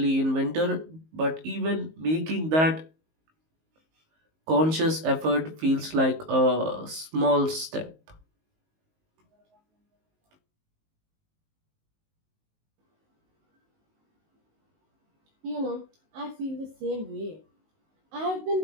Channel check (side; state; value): left; late; 19 ms